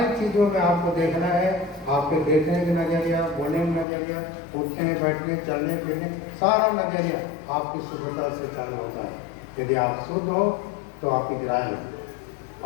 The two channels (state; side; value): drops out; right; at 3.9 s